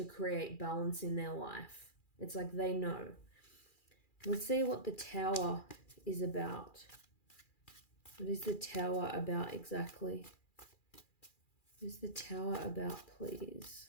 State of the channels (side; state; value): right; late; 2.4 ms